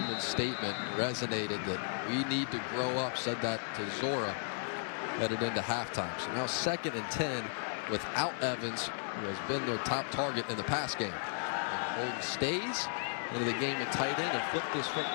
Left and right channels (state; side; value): silent; right; 54 dB below the other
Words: statement resonated that we need to grow up, said that to Zora headed into halftime. So now 2nd and 10 without Evans, who has been their top target in the pass game. And Holden Stays into the game at tight end and flipped this